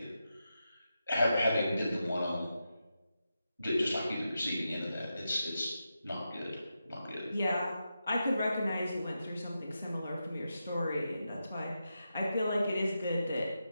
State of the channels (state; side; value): inverted; both; correlation -0.88